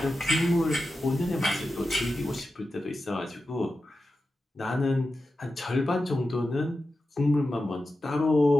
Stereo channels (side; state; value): both; normal; correlation 0.91